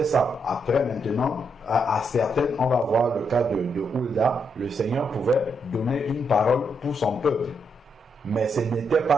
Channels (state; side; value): normal; both; correlation 0.79